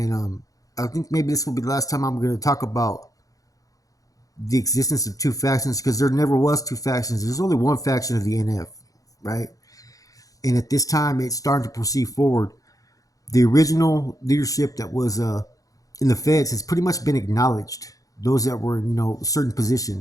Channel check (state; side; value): late; right; 0.17 ms